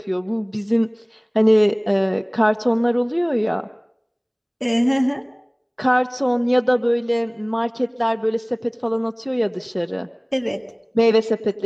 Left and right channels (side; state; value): both; identical; correlation 1.00